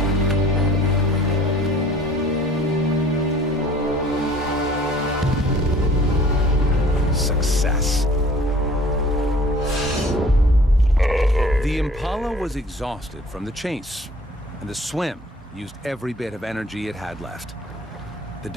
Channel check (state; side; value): normal; both; correlation 0.51